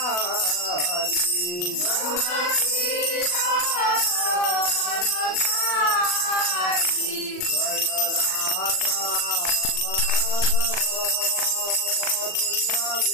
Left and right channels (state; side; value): late; right; 40 ms